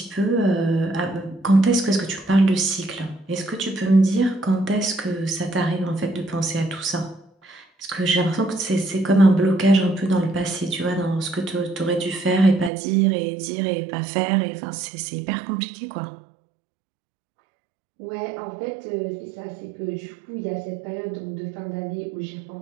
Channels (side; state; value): left; drops out; at 12.7 s